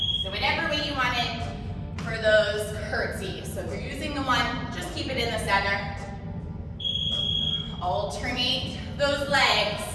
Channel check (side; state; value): both; identical; correlation 1.00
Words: So whatever way you want it for those curtsies. So if you're using the one, just keep it in the center. Alternate those legs.